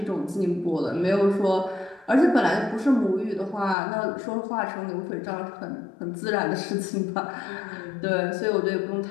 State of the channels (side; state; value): right; drops out; at 3.8 s